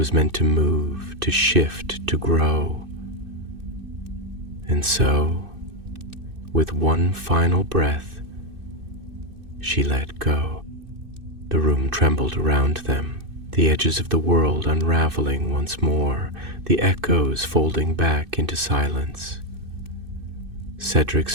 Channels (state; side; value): late; left; 2.6 ms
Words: meant to move, to shift, to grow. And so, with one final breath, she let go. The room trembled around them, the edges of the world unraveling once more, the echoes folding back into silence. Cedric's